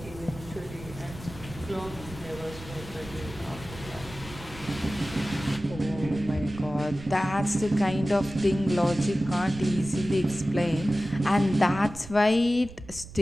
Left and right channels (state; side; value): noise; right; rumble, 16 dB below the sound